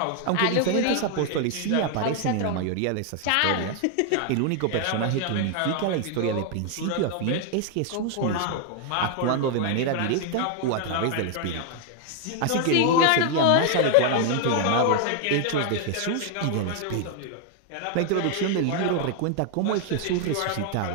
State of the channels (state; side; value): different; both; correlation 0.00